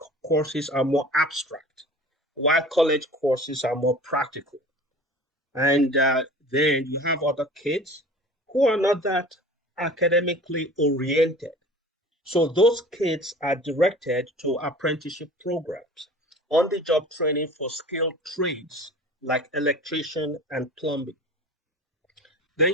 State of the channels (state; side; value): normal; both; correlation 0.42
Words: courses are more abstract. while college courses are more practical. And then you have other kids who are not that academically oriented. So those kids are directed to apprenticeship programs, on-the-job training for skilled trades like electrician and plumbing. Then